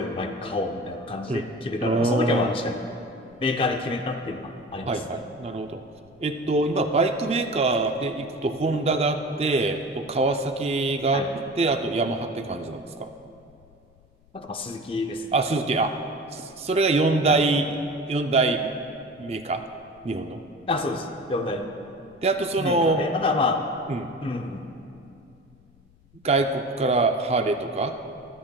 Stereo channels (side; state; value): left; noise; rumble, 29 dB below the sound